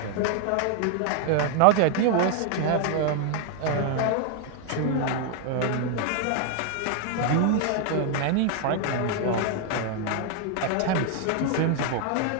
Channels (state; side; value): different; both; correlation 0.00